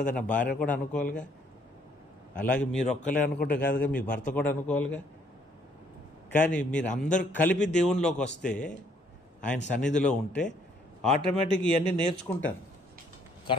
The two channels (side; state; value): both; normal; correlation 0.66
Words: నా భార్య కూడా అనుకోవాలిగా. అలాగే మీరు ఒక్కలే అనుకుంటే కాదుగా, మీ భర్త కూడా అనుకోవాలిగా. కానీ మీరు అందరూ కలిపి దేవునిలోకి వస్తే, ఆయన సన్నిధిలో ఉంటే ఆటోమేటిక్ ఇవన్నీ నేర్చుకుంటారు